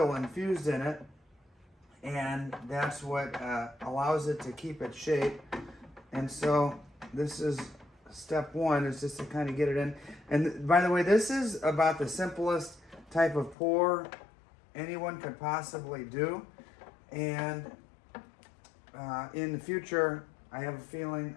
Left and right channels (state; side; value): drops out; right; at 13.6 s